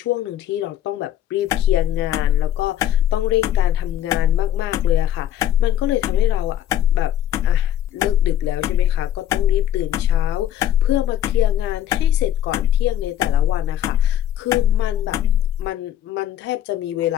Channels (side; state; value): right; quieter; 11.2 dB